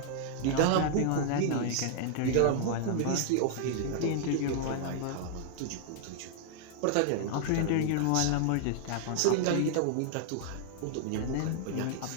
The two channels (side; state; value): both; different; correlation -0.01